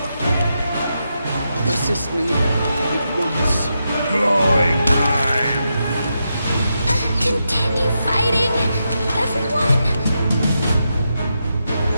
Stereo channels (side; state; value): both; inverted; correlation -0.85